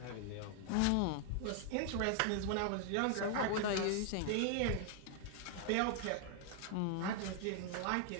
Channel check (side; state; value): both; different; correlation 0.00